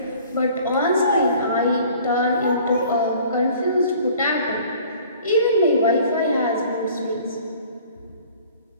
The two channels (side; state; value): both; inverted; correlation -0.51